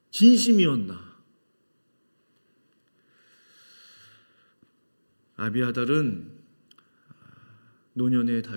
진심이었나? 아비아달은 노년의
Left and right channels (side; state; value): both; inverted; correlation -1.00